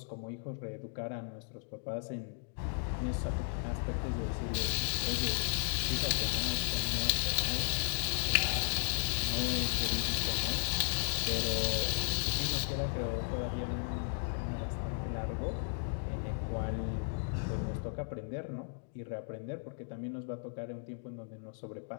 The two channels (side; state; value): right; silent; digital silence